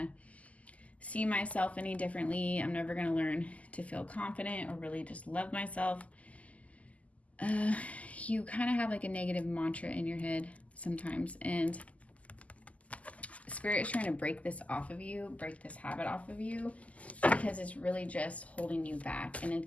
see myself any differently. I'm never going to learn to feel confident or really just love myself. You kind of have like a negative mantra in your head sometimes, and Spirit is trying to break this off of you, break this habit off of you, because it's really just holding you back, and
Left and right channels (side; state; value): right; late; 0.070 ms